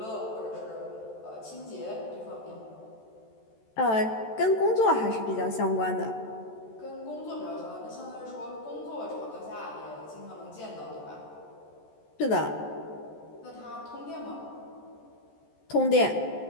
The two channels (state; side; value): late; right; 14 ms